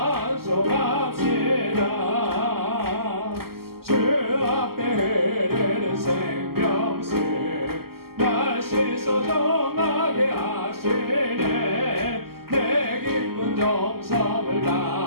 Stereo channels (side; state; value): left; late; 0.94 ms